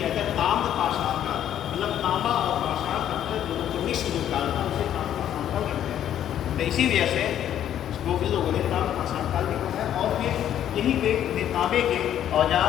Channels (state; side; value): quieter; right; 10.7 dB